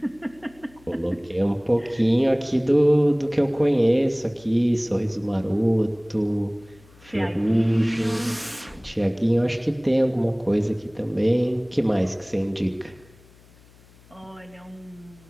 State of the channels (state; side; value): noise; left; hum, 27 dB below the sound